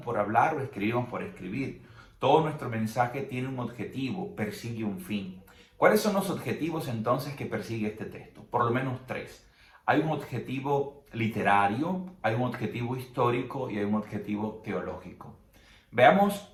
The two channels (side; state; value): both; identical; correlation 1.00